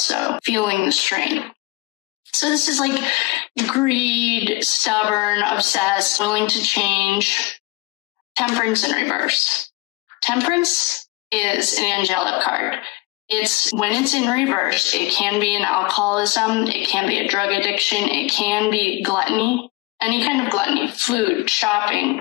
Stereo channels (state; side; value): quieter; right; 22.8 dB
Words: feeling the strain. So this is like greed, stubborn, obsessed, willing to change. Temperance in reverse. Temperance is an angelic card. When it's in reverse, it can be an alcoholism, it can be a drug addiction, it can be gluttony, any kind of gluttony, food,